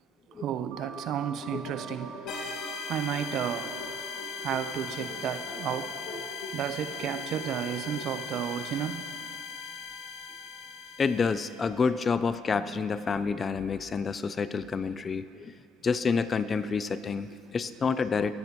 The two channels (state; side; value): normal; both; correlation 0.68